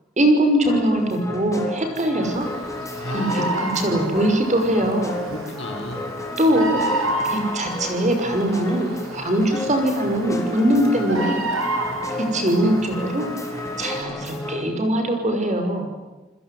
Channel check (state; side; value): normal; both; correlation 0.53